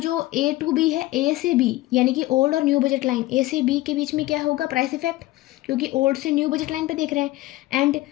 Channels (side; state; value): right; quieter; 17.8 dB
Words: ए टू बी है, ए से बी यानी कि ओल्ड और न्यू बजट लाइन, ए से बी के बीच में क्या होगा, प्राइस इफेक्ट, क्योंकि ओल्ड से न्यू बजट लाइन पे देख रहे हैं। एंड